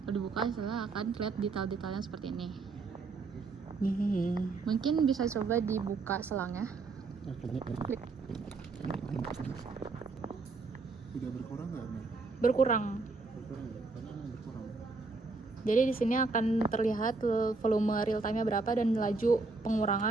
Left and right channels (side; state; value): left; quieter; 3.9 dB